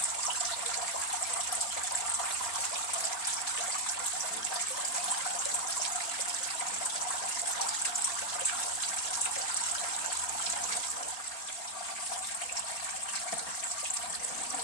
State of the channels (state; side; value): late; right; 4.4 ms